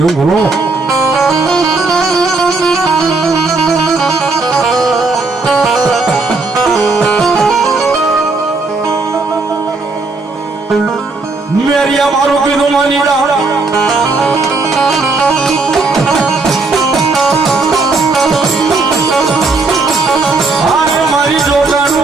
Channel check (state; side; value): quieter; left; 3.7 dB